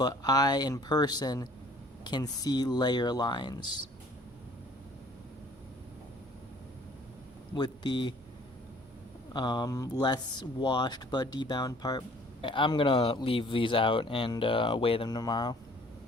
I, in person, can see layer lines with the less washed but debound part. I'm going to leave these out and weigh them tomorrow.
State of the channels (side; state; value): both; normal; correlation 0.55